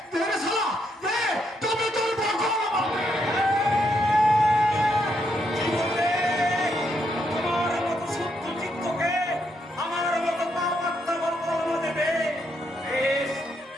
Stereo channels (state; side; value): normal; both; correlation 0.77